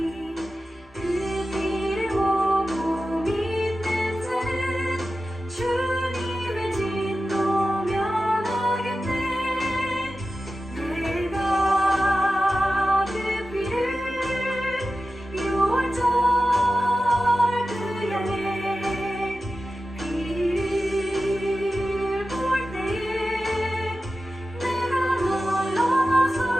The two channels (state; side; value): normal; both; correlation 0.93